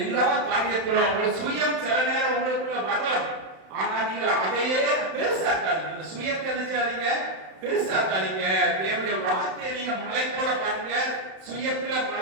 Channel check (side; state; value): left; late; 31 ms